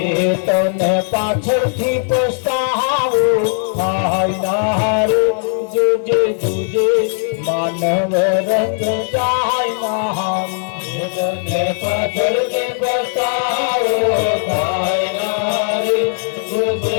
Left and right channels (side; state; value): right; silent; digital silence